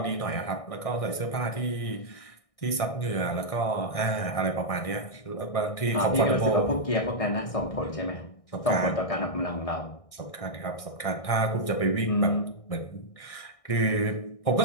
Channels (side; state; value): right; late; 1.6 ms